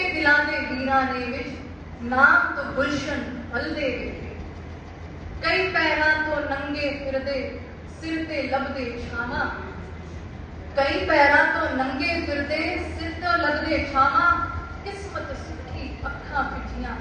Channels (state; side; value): identical; both; correlation 1.00